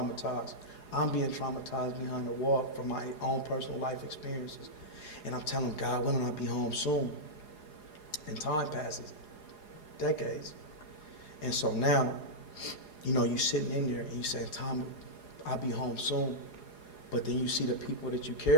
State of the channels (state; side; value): late; right; 4.8 ms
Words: I'm being traumatized behind the wall from my own personal life experiences. And I'm telling God, when will I be home soon? And time passes, decades. And so now, you sitting in there and you saying, Tom, I'll be home soon. But then you see the people that you